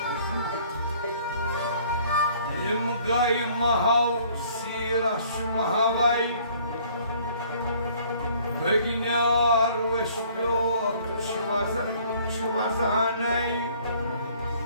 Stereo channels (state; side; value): inverted; both; correlation -0.57